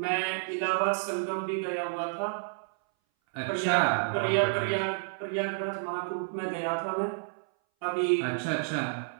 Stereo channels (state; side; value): silent; left; 58 dB below the other